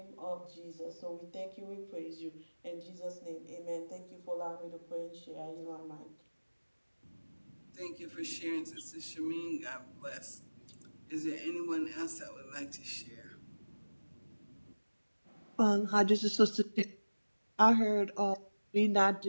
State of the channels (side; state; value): both; inverted; correlation -1.00